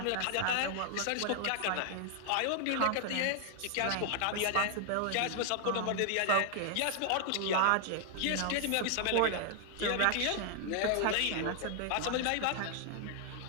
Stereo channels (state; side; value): different; both; correlation 0.00